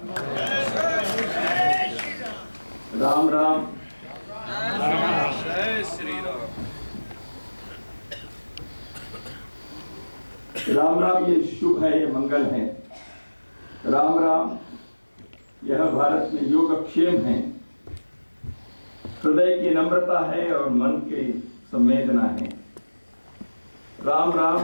राम राम। जय श्री राम। राम राम ये शुभ है, ये मंगल है। राम राम यह भारत में योगक्षेम है, हृदय की नम्रता है और मन की संवेदना है। राम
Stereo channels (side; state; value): both; inverted; correlation -1.00